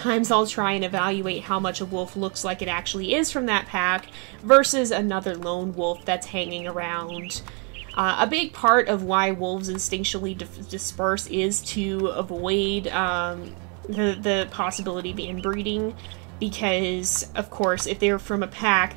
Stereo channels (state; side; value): quieter; left; 36.0 dB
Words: I'll try and evaluate how much a wolf looks like it actually is from that pack versus another lone wolf that's hanging around. A big part of why wolves instinctually disperse is to avoid the possibility of inbreeding, because of course if they're from a pack